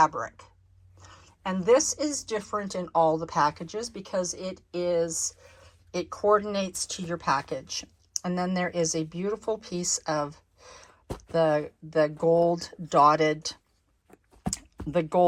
And this is different in all the packages because it coordinates to your package. And then there is a beautiful piece of the gold dotted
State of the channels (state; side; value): identical; both; correlation 1.00